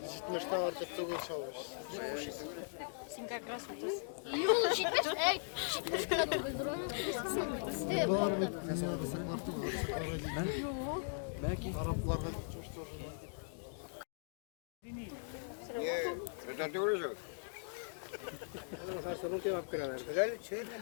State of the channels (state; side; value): silent; right; digital silence